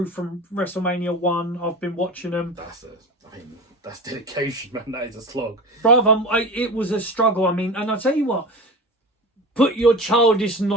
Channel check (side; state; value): both; normal; correlation 0.31